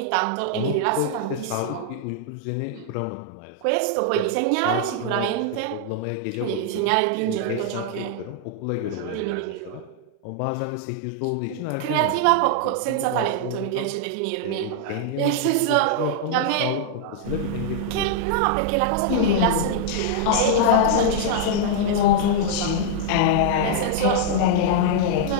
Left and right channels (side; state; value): both; different; correlation -0.01